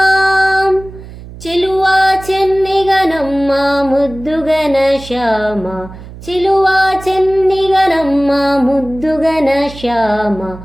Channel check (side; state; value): right; noise; hum, 16 dB below the sound